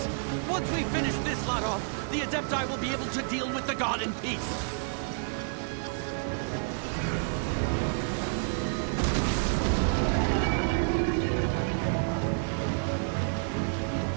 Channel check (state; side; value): silent; left; 58 dB below the other